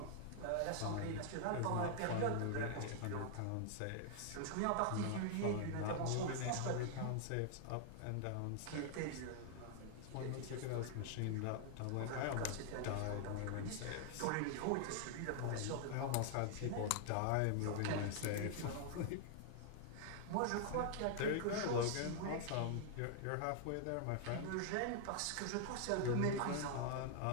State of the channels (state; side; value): different; both; correlation 0.00